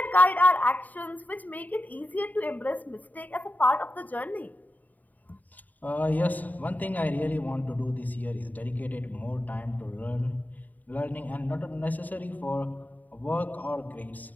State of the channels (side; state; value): right; late; 0.080 ms